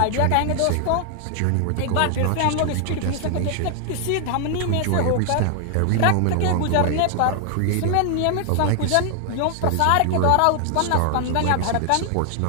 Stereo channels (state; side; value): different; both; correlation 0.00